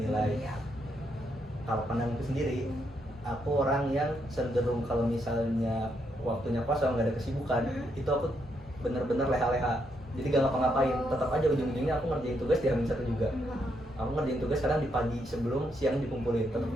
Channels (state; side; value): normal; both; correlation 0.78